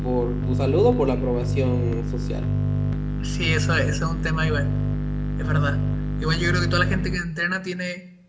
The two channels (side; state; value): both; identical; correlation 1.00